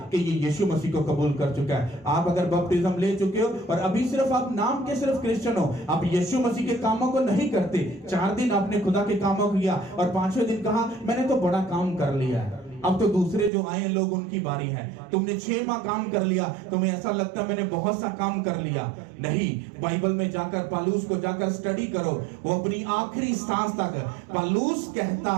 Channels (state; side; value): drops out; left; at 13.5 s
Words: कि ये यीशु मसीह को कबूल कर चुका है। आप अगर बपतिस्म ले चुके हो और अभी सिर्फ आप नाम के सिर्फ क्रिश्चियन हो, आप यीशु मसीह के कामों को नहीं करते, 4 दिन आपने खुदा के कामों को किया और 5वें दिन कहा मैंने तो बड़ा काम कर लिया है, अब तो दूसरे जो आए लोग उनकी बारी है। तुमने 6 माह काम कर लिया, तुम्हें ऐसा लगता है मैंने बहुत सा काम कर लिया। नहीं, बाइबल में जाकर पौलुस को जाकर स्टडी करो। वो अपनी आखिरी सांस तक पौलुस कहता